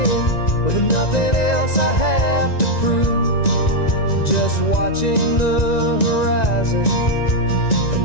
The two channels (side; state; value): right; late; 1.9 ms